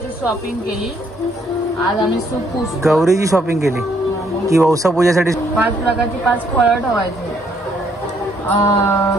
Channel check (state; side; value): normal; both; correlation 0.69